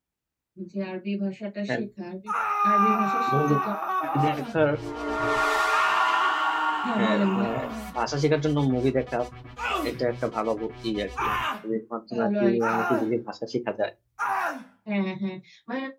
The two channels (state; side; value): identical; both; correlation 1.00